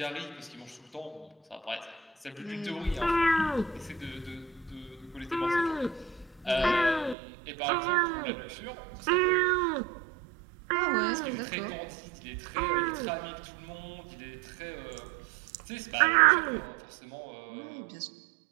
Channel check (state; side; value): drops out; left; at 7.2 s